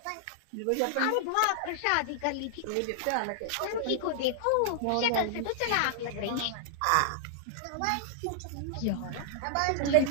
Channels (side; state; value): both; different; correlation -0.01